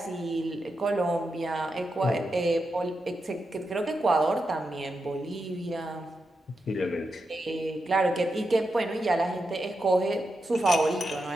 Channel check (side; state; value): both; normal; correlation 0.87